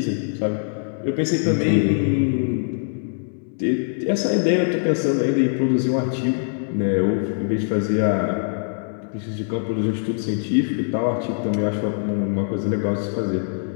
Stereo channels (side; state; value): right; silent; 64 dB below the other